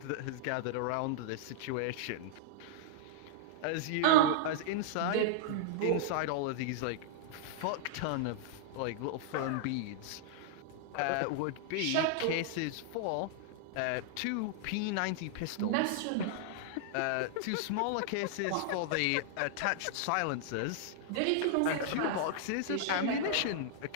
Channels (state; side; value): different; both; correlation -0.01